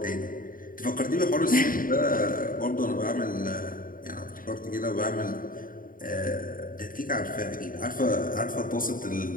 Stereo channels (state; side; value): late; right; 0.40 ms